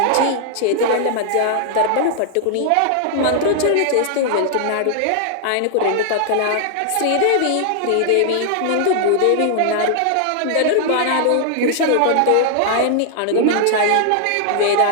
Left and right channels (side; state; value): both; different; correlation -0.01